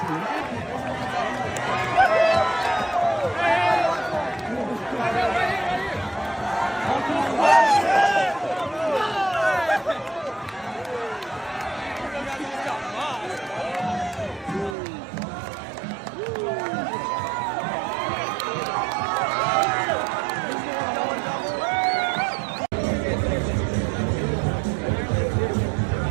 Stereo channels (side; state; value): left; drops out; at 14.8 s